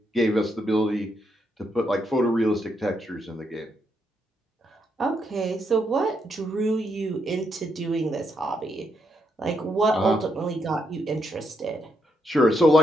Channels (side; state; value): both; normal; correlation 0.78